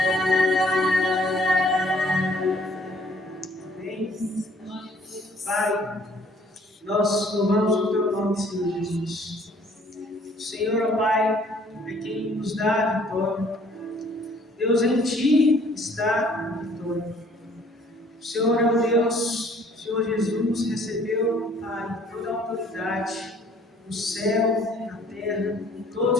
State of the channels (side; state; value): both; normal; correlation 0.59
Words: Pai, nós louvamos o teu nome, Senhor Jesus. O Senhor, ó Pai, é quem nos dá a vitória. Deus, em ti está a vitória. O Senhor é o Deus, o Senhor Jesus recebeu, Pai, toda a autoridade no céu, na terra, em